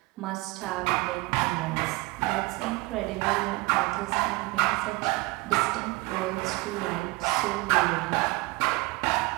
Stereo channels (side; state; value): left; quieter; 23.7 dB